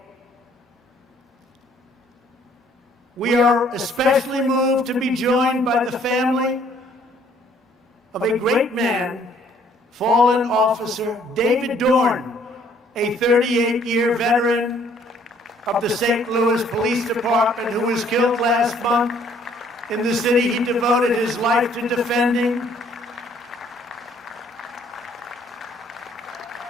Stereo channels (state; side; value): normal; both; correlation 0.62